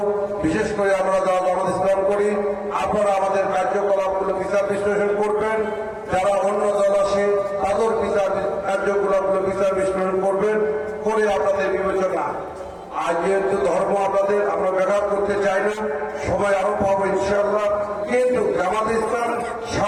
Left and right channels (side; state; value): both; identical; correlation 1.00